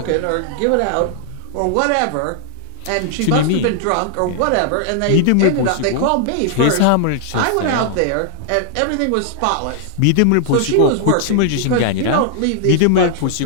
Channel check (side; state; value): both; different; correlation -0.01